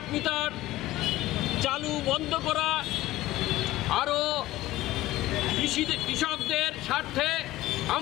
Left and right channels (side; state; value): right; quieter; 16.6 dB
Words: মিটার চালু বন্ধ করা, আরও কৃষকদের স্বার্থে